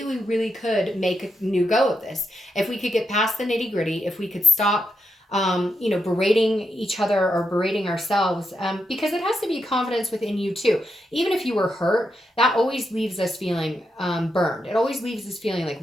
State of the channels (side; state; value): both; normal; correlation 0.84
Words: we really could make a new go of this. If we could get past the nitty gritty, if we could stop, berating each other or berating ourselves, because it has to be confidence within you too. Even if you were hurt, that always leaves us feeling burned. It always leaves us feeling like,